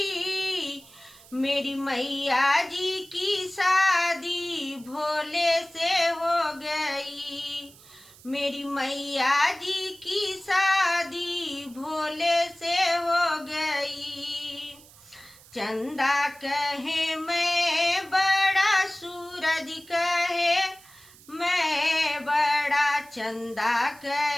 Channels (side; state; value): right; noise; hiss, 23 dB below the sound